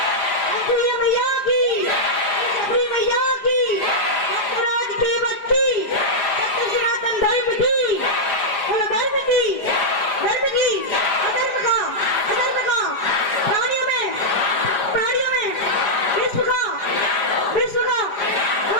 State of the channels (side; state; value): right; late; 4.9 ms